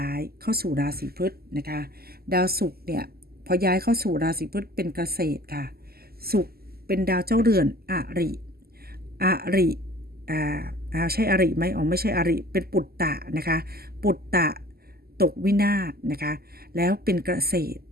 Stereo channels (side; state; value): left; late; 0.45 ms